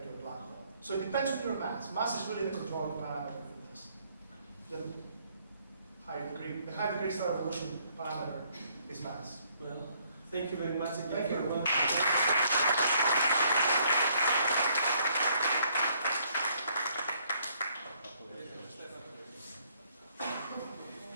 to a black hole. So it depends on your mass. Mass is really the controlling parameter for this. The high degree stellar evolution parameter is mass. Well, thank you very much. Thank you. Thank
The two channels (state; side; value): inverted; both; correlation -0.68